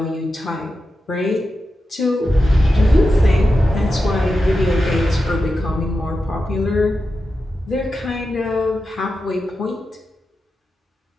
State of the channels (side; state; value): both; normal; correlation 0.90